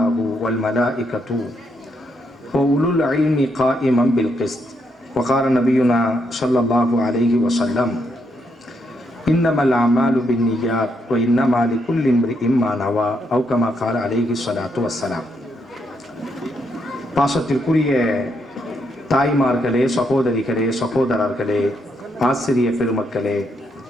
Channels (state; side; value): normal; both; correlation 0.78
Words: هو والملائكة وأولو العلم قائما بالقسط. وقال نبينا صلى الله عليه وسلم: إنما الأعمال بالنيات وإنما لكل امرئ ما نوى أو كما قال عليه الصلاة والسلام. பாசத்திற்குரிய தாய்மார்களே, சகோதரிகளே, சகோதரர்களே, ஆசிரிய பெருமக்களே,